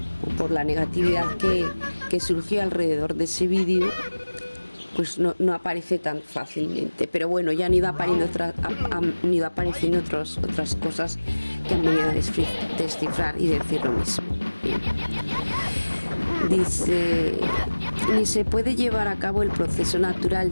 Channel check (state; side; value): inverted; both; correlation -1.00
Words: por la negatividad que surgió alrededor de ese vídeo. Pues no aparece tan fácilmente, pero bueno, ya han ido apareciendo otras cosas que han venido a descifrar y decir lo mismo. Bien. Dice: ni se puede llevar a cabo el proceso natural